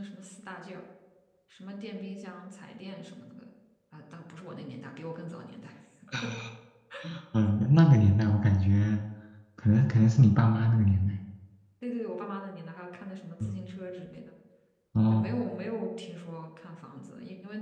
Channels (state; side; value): identical; both; correlation 1.00